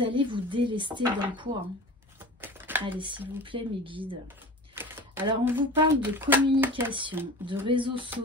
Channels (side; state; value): both; normal; correlation 0.36